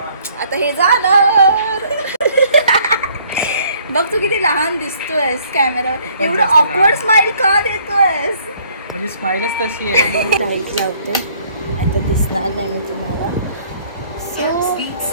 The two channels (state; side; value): inverted; both; correlation -0.61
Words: आता हे झालं. बघ तू किती लहान दिसतोयस कॅमेरा. एवढं ऑकवर्ड स्माइल का देतोयस? म्हणजे स्माइलच तशी आहे. लाईट लावते, आता दिसणार नाही मी तुम्हाला.